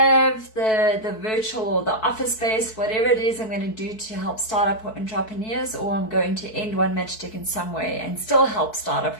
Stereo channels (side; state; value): right; late; 4.6 ms